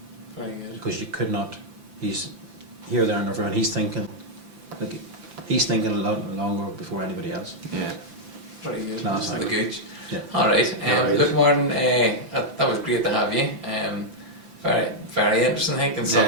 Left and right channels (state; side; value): late; left; 5.9 ms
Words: Very good. Because you could not. He's here, there, and everywhere, and he's thinking a lot longer before anybody else. Yeah. Very good. Class. The Gooch. Yeah. All right. Look, Martin, that was great to have you. Very, very interesting. I think, and